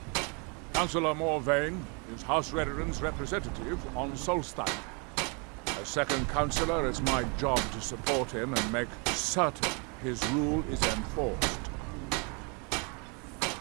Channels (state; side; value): quieter; left; 33.7 dB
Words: Councillor Morvain is House Redoran's representative on Solstein. As second Councillor, it's my job to support him and make certain his rule is enforced.